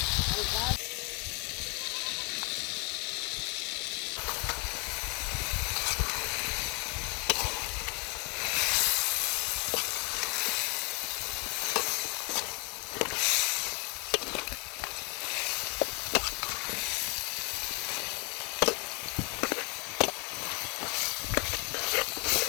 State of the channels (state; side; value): quieter; right; 32.2 dB